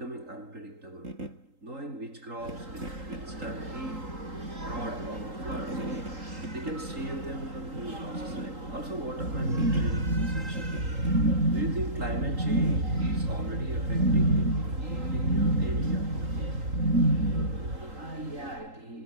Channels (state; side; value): late; left; 3.8 ms